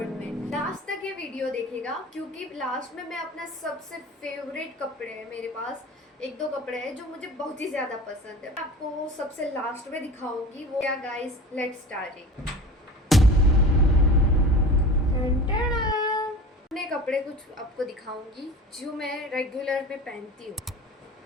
में। लास्ट तक ये वीडियो देखेगा क्योंकि लास्ट में मैं अपना सबसे फेवरेट कपड़े हैं, मेरे पास एक दो कपड़े हैं जो मुझे बहुत ही ज्यादा पसंद है, आपको सबसे लास्ट में दिखाऊंगी वो क्या। Guys let's start. अपने कपड़े कुछ आपको दिखाऊंगी जो मैं रेगुलर में पहनती हूँ।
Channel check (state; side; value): normal; both; correlation 0.37